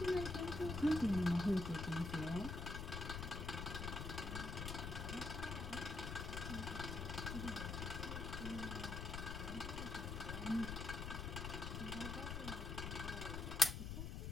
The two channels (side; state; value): left; noise; rumble, 4 dB below the sound